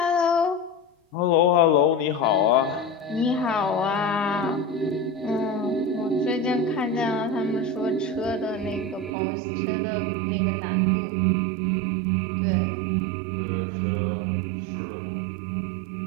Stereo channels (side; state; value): left; drops out; at 9.1 s